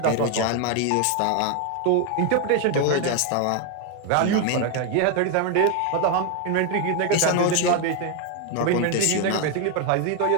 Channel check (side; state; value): both; different; correlation 0.01